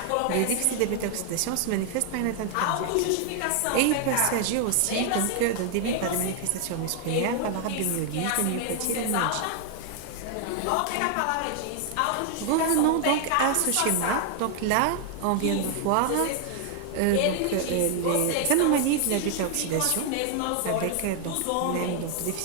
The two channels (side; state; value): both; different; correlation 0.00